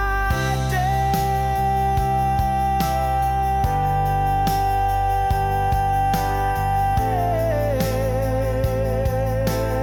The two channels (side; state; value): both; identical; correlation 1.00